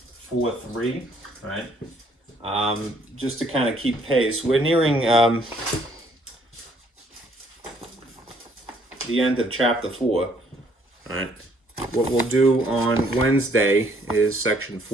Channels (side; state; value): both; normal; correlation 0.65